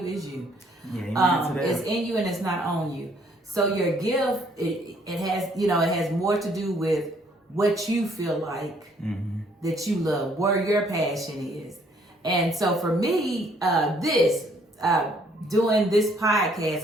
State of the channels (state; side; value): normal; both; correlation 0.64